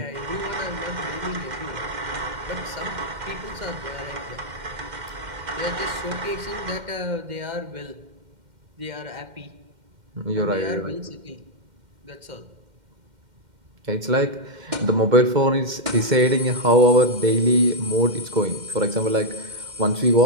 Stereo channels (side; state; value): left; late; 2.1 ms